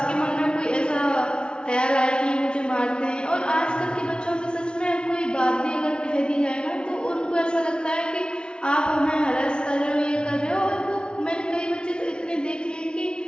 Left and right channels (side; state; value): right; late; 0.055 ms